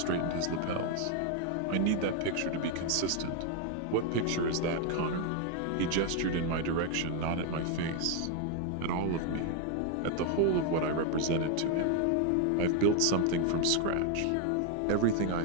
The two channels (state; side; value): different; both; correlation 0.01